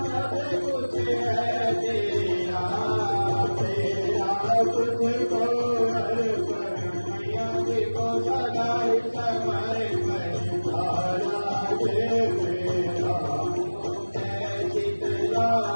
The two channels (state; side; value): inverted; both; correlation -1.00